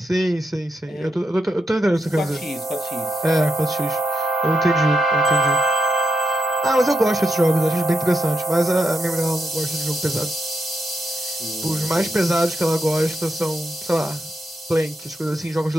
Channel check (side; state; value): both; normal; correlation 0.83